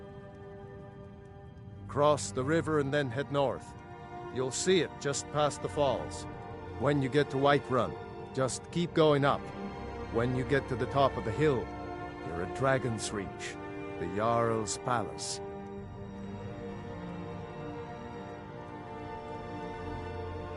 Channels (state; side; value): identical; both; correlation 1.00